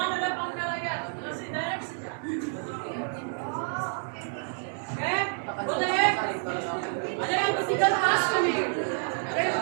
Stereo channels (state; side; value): silent; left; 59 dB below the other